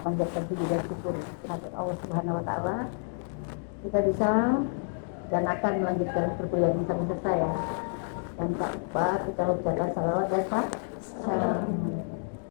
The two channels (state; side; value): silent; right; 58 dB below the other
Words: panjatkan puji dan syukur kepada Allah Subhanahu Wa Taala. Kita bisa dan akan melanjutkan perkuliahan bersama saya. Dan tak lupa kita ucapkan salawat dan salam